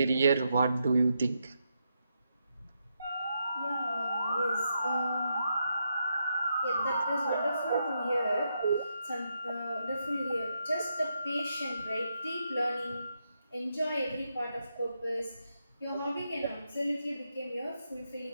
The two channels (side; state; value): both; inverted; correlation -0.82